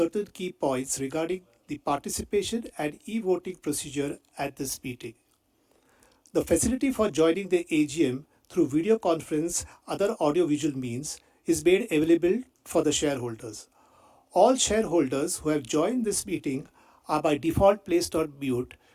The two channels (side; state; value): both; identical; correlation 1.00